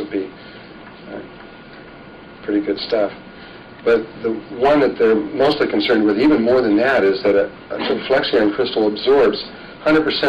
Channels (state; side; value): identical; both; correlation 1.00